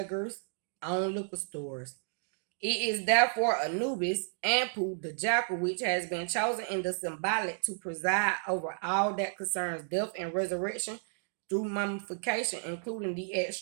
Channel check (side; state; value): left; silent; digital silence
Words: own liquor stores. It is therefore Anubis, Anpu, the jackal, which has been chosen in the symbolic to preside over all that concerns death and resurrection through mummification, including the